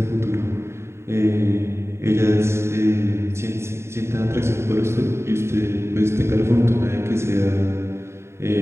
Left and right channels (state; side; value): late; left; 0.13 ms